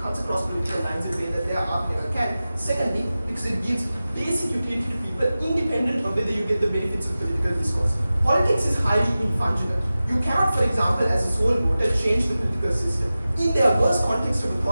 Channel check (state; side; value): inverted; both; correlation -0.95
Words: across political lines in a way that their art never can. Secondly, because it gives basic utility to people independent of whether you get the benefits of political discourse. Politics is highly infungible. You cannot, for example, as a sole voter, change the political system. In their worst context of